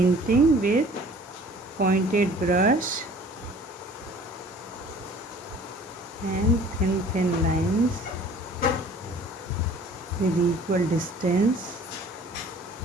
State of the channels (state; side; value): normal; both; correlation 0.50